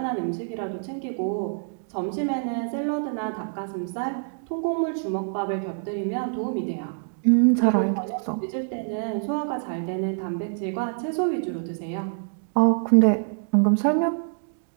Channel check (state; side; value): silent; left; digital silence